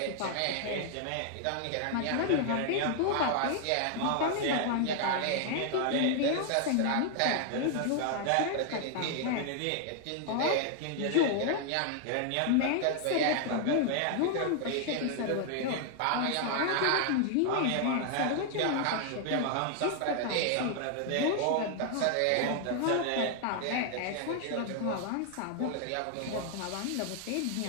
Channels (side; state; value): both; different; correlation 0.00